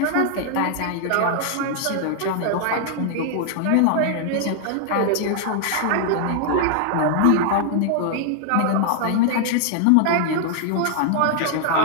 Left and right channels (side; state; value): both; different; correlation 0.00